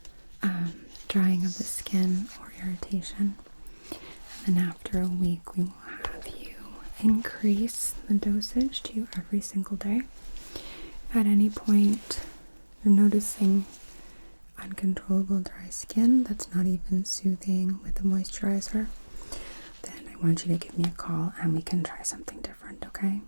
drying of the skin or irritation. And then after a week, we will have you increase the dosage to every single day. If at any point you're noticing uncontrollable dry skin that's not even soothing with the moisturizer, want you to give me a call and we can try something different, okay?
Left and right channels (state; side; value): inverted; both; correlation -1.00